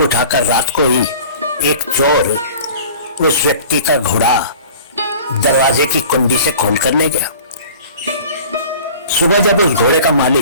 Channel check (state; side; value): inverted; both; correlation -0.44